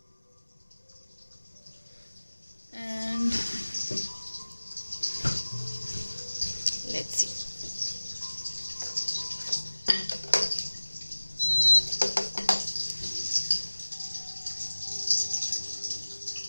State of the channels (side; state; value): both; inverted; correlation -1.00